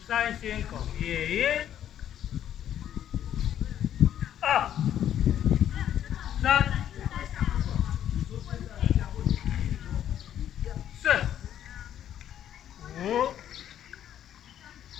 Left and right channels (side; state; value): right; quieter; 10.6 dB